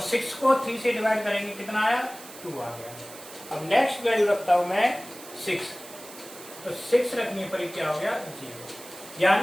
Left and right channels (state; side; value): noise; right; hiss, 16 dB below the sound